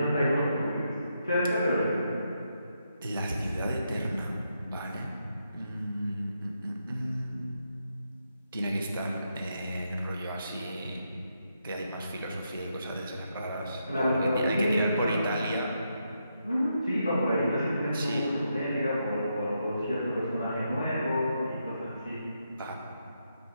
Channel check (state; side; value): inverted; both; correlation -0.81